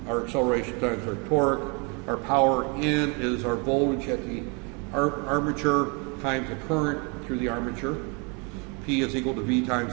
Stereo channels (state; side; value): quieter; left; 32.5 dB